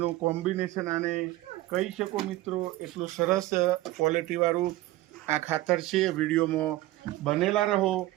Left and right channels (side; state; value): left; quieter; 16.9 dB